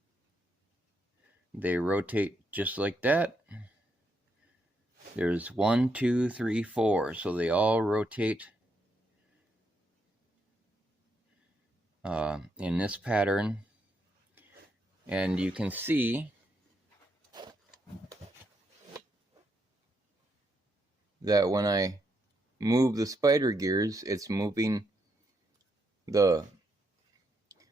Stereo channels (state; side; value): normal; both; correlation 0.78